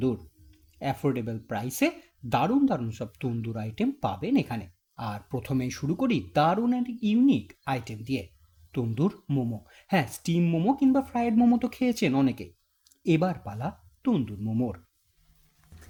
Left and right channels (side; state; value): both; identical; correlation 1.00